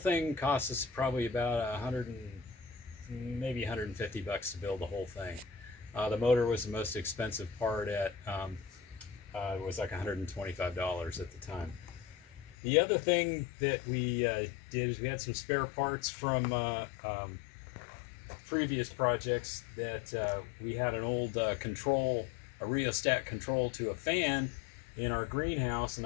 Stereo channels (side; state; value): right; drops out; at 12.6 s